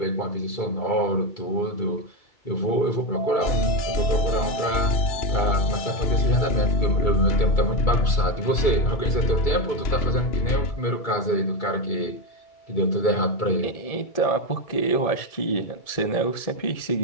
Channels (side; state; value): right; late; 2.3 ms